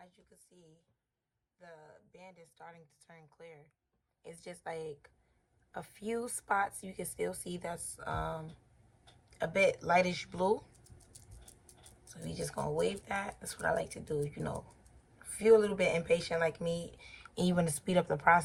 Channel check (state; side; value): identical; both; correlation 1.00